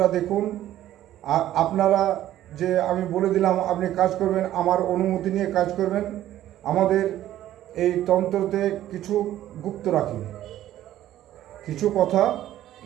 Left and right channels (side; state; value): left; quieter; 13.0 dB